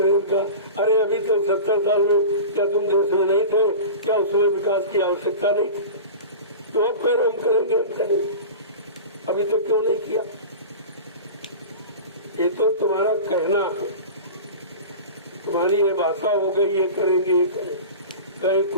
अरे अभी तक 70 साल में क्या तुम देश में नहीं थे? क्या उसमें विकास की आवश्यकता नहीं? तो अब करो, हम करेंगे। अभी तक क्यों नहीं किया? ये तो तुम्हारा कहना है, तुम्हारी ये भाषा हो गई, ये करेंगे कहीं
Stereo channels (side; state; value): both; inverted; correlation -0.32